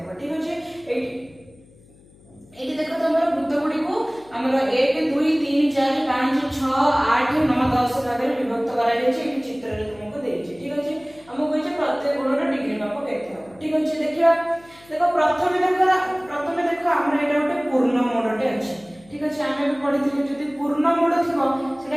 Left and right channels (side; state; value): left; noise; hum, 27 dB below the sound